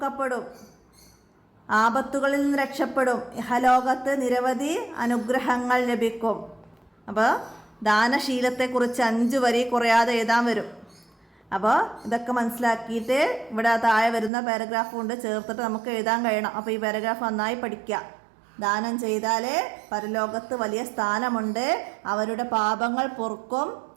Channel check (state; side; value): drops out; left; at 14.3 s